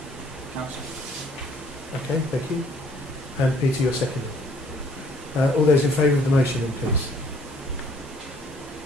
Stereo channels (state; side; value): normal; both; correlation 0.61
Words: council. Okay, thank you. And Peter, you're seconding. All those in favour of the motion then, please.